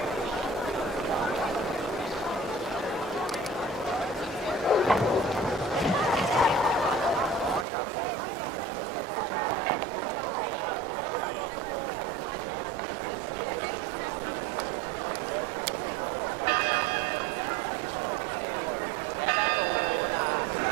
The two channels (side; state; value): left; drops out; at 7.7 s